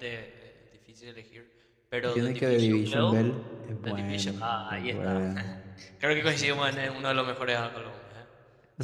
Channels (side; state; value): both; identical; correlation 1.00